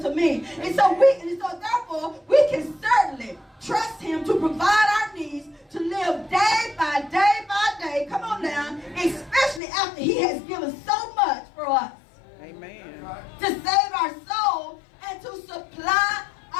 to me. And so therefore, we can certainly trust him to provide our needs, to live day by day by day. Come on now, especially after he has given so much for us. Amen. To save our soul and to supply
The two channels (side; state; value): right; drops out; at 9.6 s